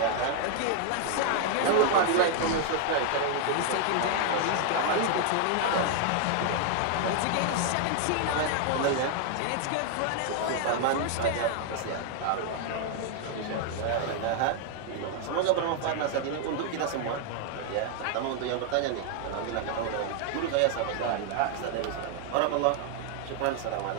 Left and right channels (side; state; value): both; different; correlation 0.00